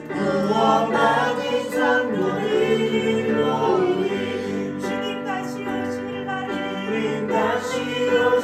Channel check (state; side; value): identical; both; correlation 1.00